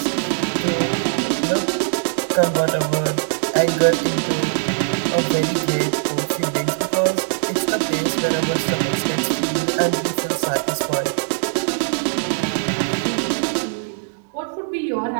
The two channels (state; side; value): silent; left; digital silence